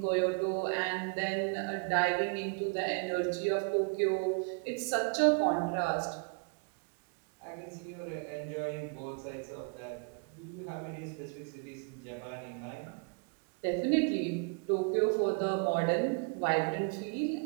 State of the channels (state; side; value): quieter; left; 35.3 dB